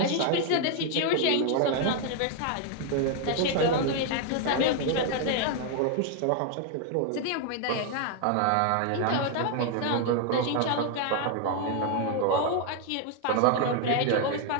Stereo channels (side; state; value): both; different; correlation 0.00